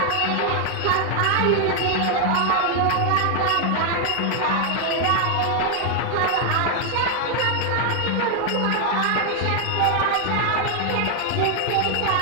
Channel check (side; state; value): both; different; correlation 0.00